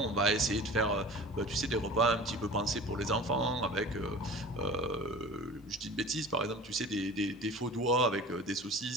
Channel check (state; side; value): normal; both; correlation 0.39